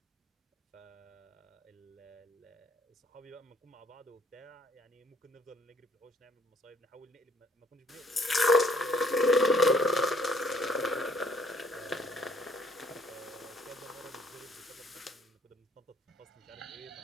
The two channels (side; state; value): both; normal; correlation 0.63